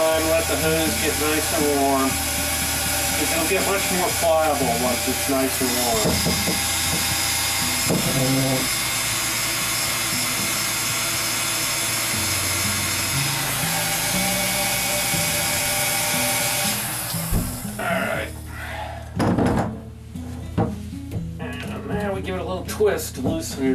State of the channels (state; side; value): identical; both; correlation 1.00